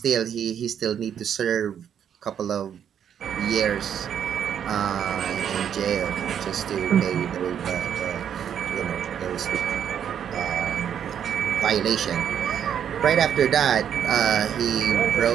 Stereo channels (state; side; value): quieter; left; 8.8 dB